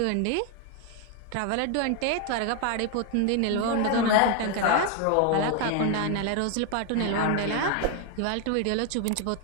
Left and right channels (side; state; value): both; different; correlation 0.01